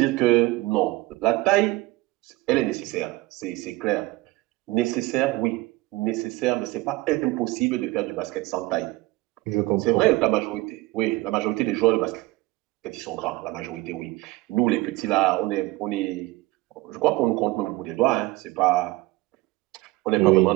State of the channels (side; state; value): left; quieter; 20.4 dB